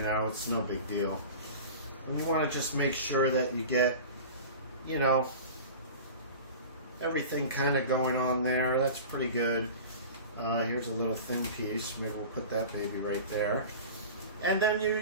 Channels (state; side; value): inverted; both; correlation -0.36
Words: it's no big deal. And you want to just make sure that you get, you know, everything kind of going on there. That's pretty good. Here's a little thin piece. Maybe we'll put that baby right there. And then